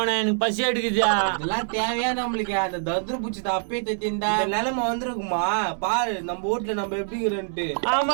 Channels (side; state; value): left; silent; digital silence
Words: எனக்கு பசி எடுக்குதா. இதெல்லாம் தேவையா நம்மளுக்கு? அந்த தத்ரு பூச்சி அப்பே தத்திந்தா நிலைமை வந்திருக்குமா பாரு நம்ம வீட்டுல நம்ம எப்படிங்கிறன்ட்டு.